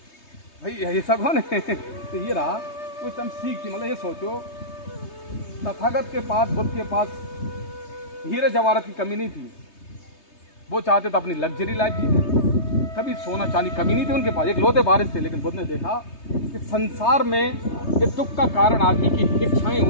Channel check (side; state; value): right; late; 3.2 ms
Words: भाई ये सब कौन है? तो ये रहा कुछ हम सीख थी। मतलब ये सोचो, तथागत के पास, बुद्ध के पास हीरे जवाहरात की कमी नहीं थी। वो चाहते तो अपनी लग्जरी लाइफ जीते, कभी सोना चांदी कमी नहीं थी उनके पास, एक लोटे बारिश थे। लेकिन बुद्ध ने देखा कि संसार में ये दुख का कारण आदमी की इच्छाएं